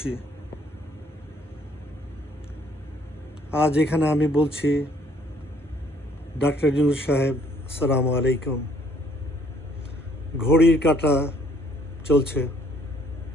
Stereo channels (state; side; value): normal; both; correlation 0.63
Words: আজ এখানে আমি বলছি, ডক্টর ইউনূস সাহেব, আসসালামু আলাইকুম। ঘড়ির কাঁটা চলছে,